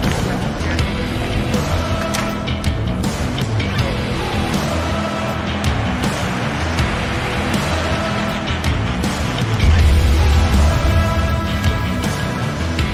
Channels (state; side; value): identical; both; correlation 1.00